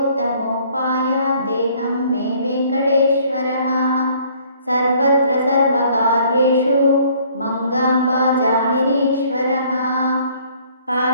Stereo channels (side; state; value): both; inverted; correlation -0.59